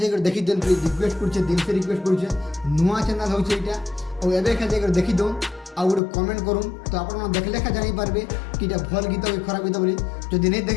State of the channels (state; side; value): drops out; right; at 6.0 s